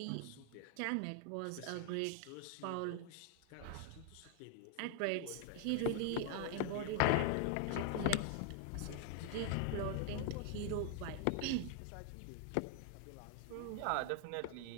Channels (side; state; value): both; different; correlation 0.00